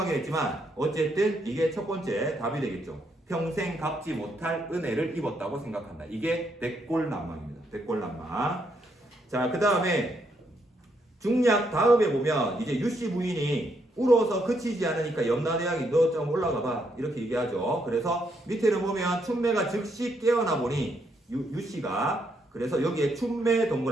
했지만 어쨌든 이게 첫 번째 답이 되겠죠. 평생 갚지 못할 은혜를 입었다고 생각한다. 이게 백골난망입니다. 백골난망. 자, 그 다음에 중략 다음에 보면 이제 유씨 부인이 울어서 그치지 않으니까 염라대왕이 너 좀 올라가 봐 이렇게 얘기하죠. 그래서 밑에를 보면 춘매가 즉시 깨어나 보니 유씨가 그래서 여기에 춘매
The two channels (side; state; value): both; normal; correlation 0.76